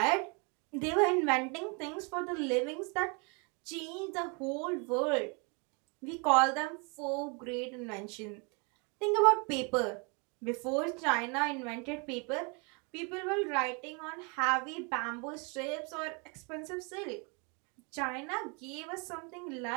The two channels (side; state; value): left; quieter; 33.3 dB